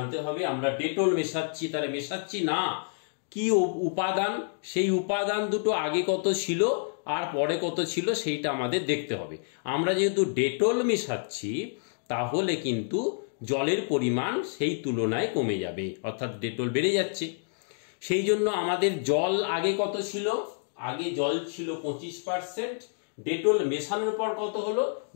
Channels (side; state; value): right; silent; digital silence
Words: হবে। আমরা ডেটল মেশাচ্ছি, তাহলে মেশাচ্ছি না কি উপাদান, সেই উপাদান দুটো আগে কত ছিল আর পরে কত ছিল সেইটা আমাদের দেখতে হবে। আমরা যেহেতু ডেটল মেশাচ্ছি তাহলে কিন্তু জলের পরিমাণ সেই তুলনায় কমে যাবে, অর্থাৎ ডেটল বেড়ে যাচ্ছে। সেই জন্য আমাদের জল আগে কত ছিল, আগে জল ছিল 25%, ডেটল মেশানোর পর কত হলো,